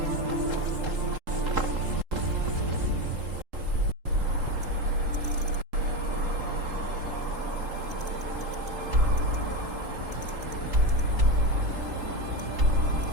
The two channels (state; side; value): late; left; 3.8 ms